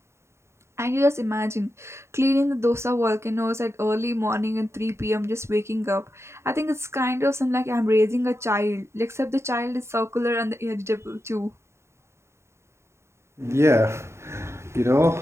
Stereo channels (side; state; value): left; late; 0.13 ms